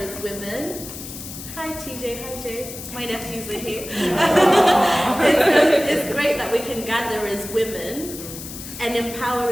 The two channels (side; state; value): left; noise; hiss, 11 dB below the sound